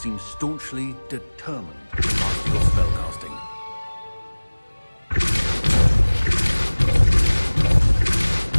staunchly determined to master your spellcasting.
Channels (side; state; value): both; inverted; correlation -1.00